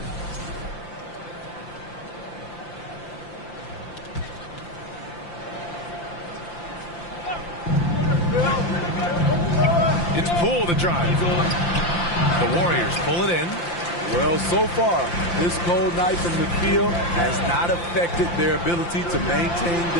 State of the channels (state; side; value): late; right; 5.8 ms